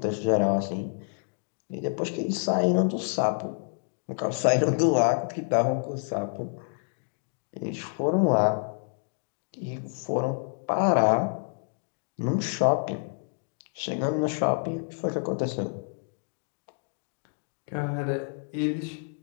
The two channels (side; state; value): right; silent; digital silence